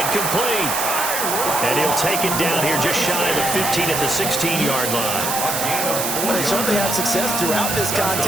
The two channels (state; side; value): noise; right; hiss, 2 dB below the sound